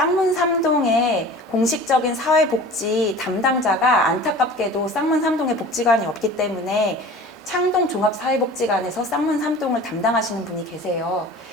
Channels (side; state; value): both; normal; correlation 0.41